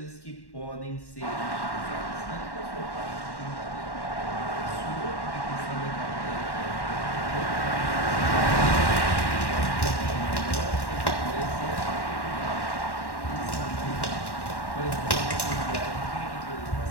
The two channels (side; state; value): right; late; 1.1 ms